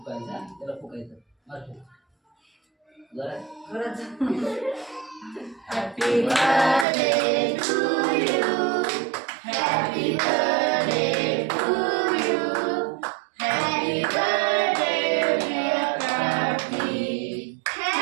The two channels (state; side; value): drops out; left; at 6.9 s